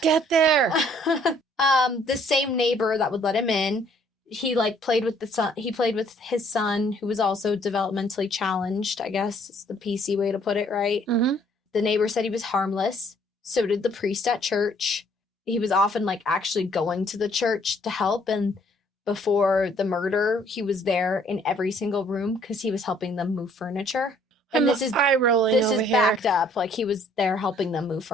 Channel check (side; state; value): both; normal; correlation 0.62